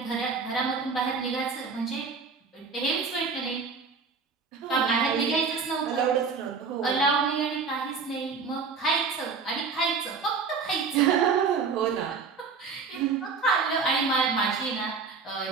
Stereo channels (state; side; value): quieter; left; 5.1 dB